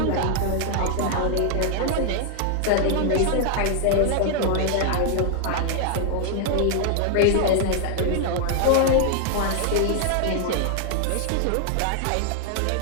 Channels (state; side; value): different; both; correlation 0.00